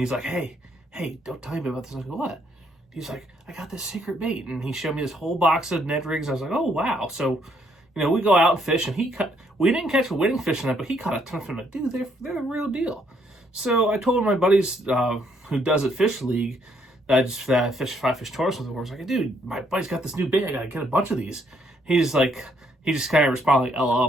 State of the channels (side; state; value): both; normal; correlation 0.70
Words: like, hey, don't tell me about this. I was like, what? He's like, I got this secret bait, and he showed me this whole box of Ned Rigs. I was like, oh, wow. So, we go out and fish, and we didn't catch a winning fish in that, but he caught a ton of them. Like, dude, they're the real deal. So I told my buddies who does it fish league that I just fish 5-fish tournaments with. I was like, dude, my buddy's got this new bait. I got to get a bunch of these. He just kind of responded like, LOL.